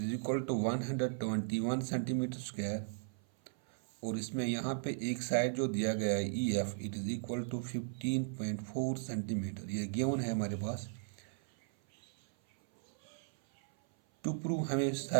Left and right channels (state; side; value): silent; left; 54 dB below the other